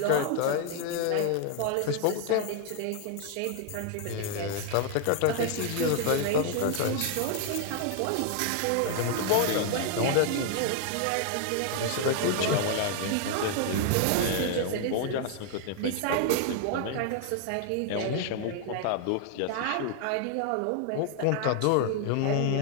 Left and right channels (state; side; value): different; both; correlation 0.00